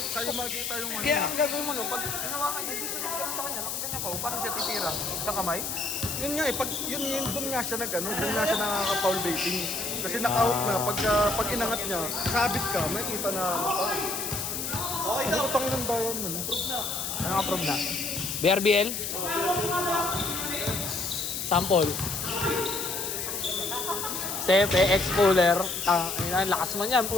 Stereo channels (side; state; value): left; noise; hiss, 3 dB below the sound